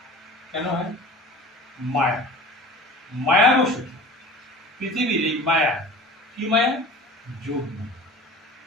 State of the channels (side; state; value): both; normal; correlation 0.40